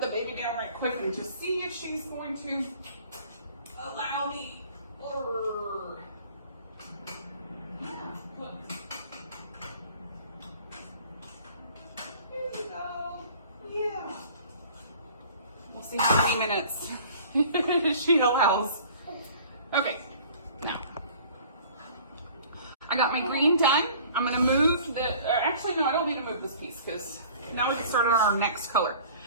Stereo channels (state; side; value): inverted; both; correlation -0.48